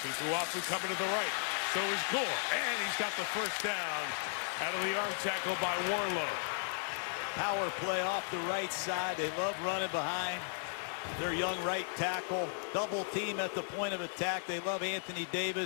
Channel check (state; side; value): silent; right; digital silence